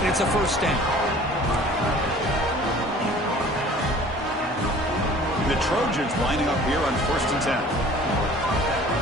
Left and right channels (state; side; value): normal; both; correlation 0.48